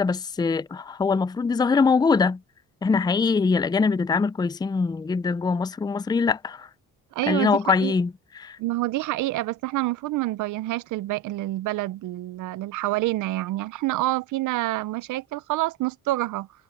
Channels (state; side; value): normal; both; correlation 0.46